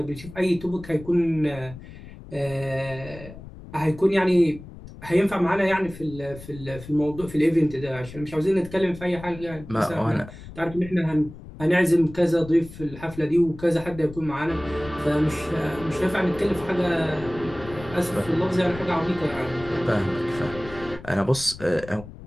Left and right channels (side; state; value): left; noise; rumble, 16 dB below the sound